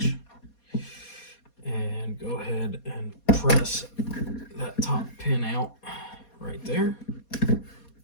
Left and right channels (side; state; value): right; late; 4.2 ms